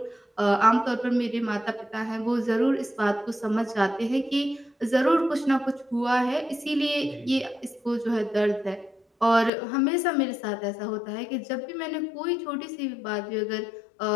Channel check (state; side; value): drops out; right; at 9.5 s